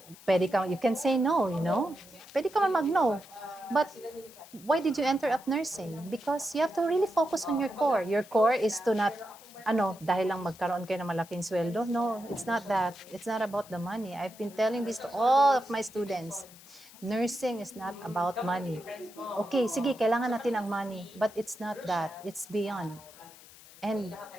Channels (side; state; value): left; noise; hiss, 21 dB below the sound